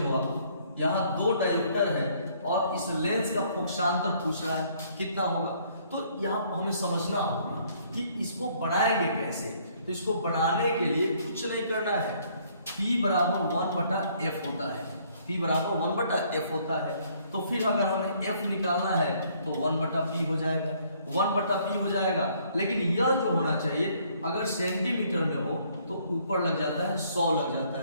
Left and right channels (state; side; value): inverted; both; correlation -0.64